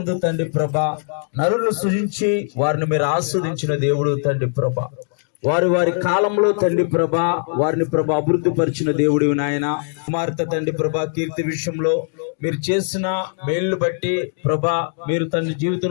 తండ్రి ప్రభా నరులను సృజించి వారిని మీరు ఆస్వాదించిన దేవుడు తండ్రి ప్రభా. వారి కాలంలో తండ్రి ప్రభా వారిని ప్రభా అభివృద్ధి పరిచిన దేవుడు నాయన. కుమార్తె తండ్రి ప్రభా కీర్తి విషయంలో మీరు చేసిన మేళ్లు బట్టి ప్రభా, మీరు తండ్రి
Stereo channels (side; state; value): right; silent; 65 dB below the other